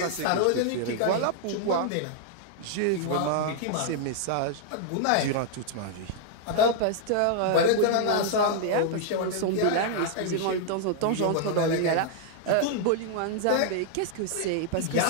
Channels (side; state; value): both; different; correlation -0.01